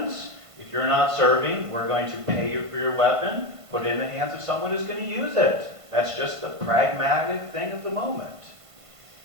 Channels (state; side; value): late; left; 1.5 ms